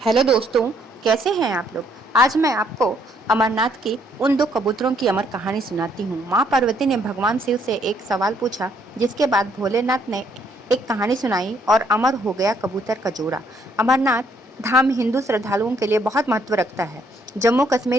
दोस्तों, कैसे हैं आप लोग। आज मैं आपको अमरनाथ की उन दो कबूतरों की अमर कहानी सुनाती हूँ। माँ पार्वती ने भगवान शिव से एक सवाल पूछा, जिसके बाद भोलेनाथ ने एक कहानी सुनाई और अमर हो गया कबूतर का जोड़ा। अमरनाथ धाम हिंदू श्रद्धालुओं के लिए बहुत महत्व रखता है। जम्मू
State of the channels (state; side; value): normal; both; correlation 0.68